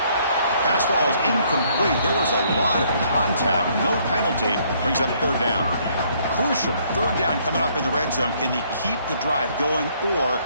Pass ball is incomplete. There was a lot of contact. No penalty. Brings up 3rd down. Crucial 3rd down coming up in the red zone. Can they keep the drive going, or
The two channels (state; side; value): inverted; both; correlation -0.66